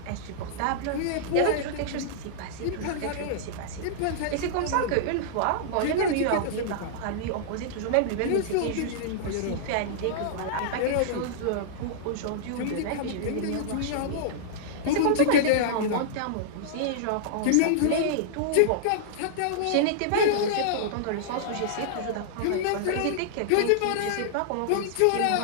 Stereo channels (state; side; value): different; both; correlation -0.02